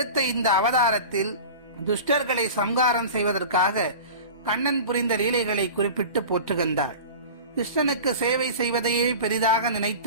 இந்த அவதாரத்தில் துஷ்டர்களை சம்ஹாரம் செய்வதற்காக கண்ணன் புரிந்த லீலைகளை குறிப்பிட்டு போற்றுகின்றாள். கிருஷ்ணனுக்கு சேவை செய்வதையே பெரிதாக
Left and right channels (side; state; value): both; inverted; correlation -0.35